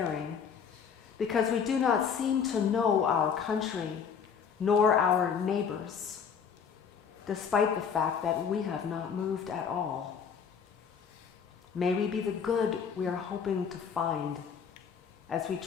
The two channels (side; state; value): right; quieter; 6.8 dB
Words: because we do not seem to know our country nor our neighbors, despite the fact that we have not moved at all. May we be the good we are hoping to find as we